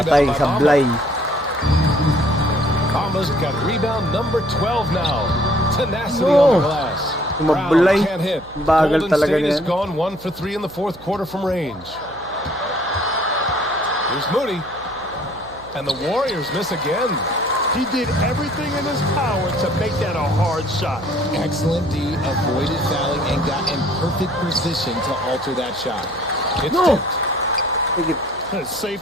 rebound by sablay. Bamba's got rebound number 12 now. Tenacity on the glass. Mablay. Brown can't hit. Bagal Golden talaga State has niyan. gone 1 for 3 in the 4th quarter from range. Here's Moody. And the Warriors miss again. He did everything in his power to make that a hard shot. Excellent D, avoided fouling, and got in perfect position to alter that shot. It's It's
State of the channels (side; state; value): right; noise; hum, 21 dB below the sound